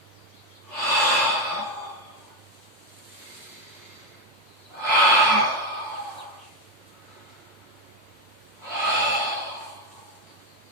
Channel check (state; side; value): normal; both; correlation 0.09